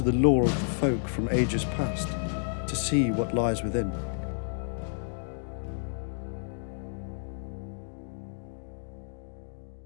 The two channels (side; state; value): right; silent; digital silence